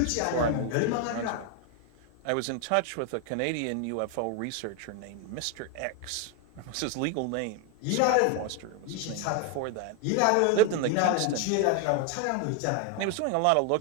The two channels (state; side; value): different; both; correlation 0.01